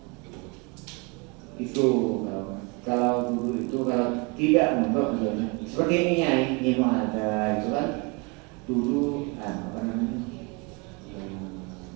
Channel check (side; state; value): left; quieter; 29.5 dB